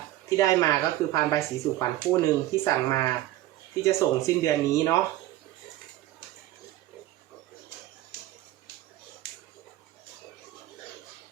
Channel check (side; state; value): left; quieter; 15.1 dB